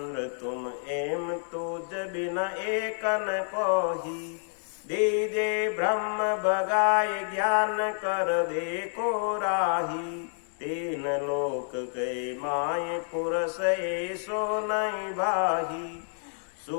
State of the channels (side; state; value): right; silent; digital silence